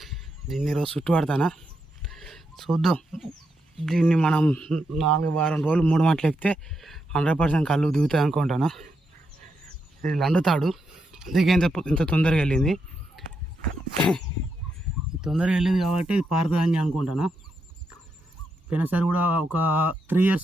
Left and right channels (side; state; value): both; normal; correlation 0.83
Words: దీన్ని ఈరోజు చుట్టుపడతానా చూద్దాం. దీన్ని మనం 4 వారం రోజులు 3 మాటలు ఎక్కితే 100% కళ్ళు దిగుతాయి అనుకుంటాను. ఇది లండుతాడు, అందుకే ఇంత తొందరగా వెళ్ళింది. తొందరగా వెళ్ళింది కాబట్టి ఇది పారుతుందని అనుకుంటాను. పోయినసారి కూడా ఒక 3 years